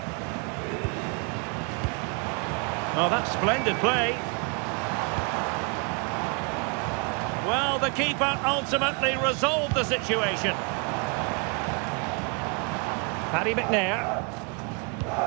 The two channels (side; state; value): left; quieter; 34.2 dB